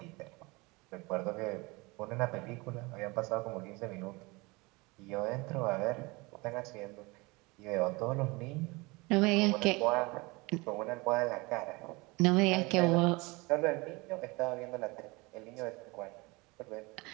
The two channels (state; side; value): quieter; left; 25.0 dB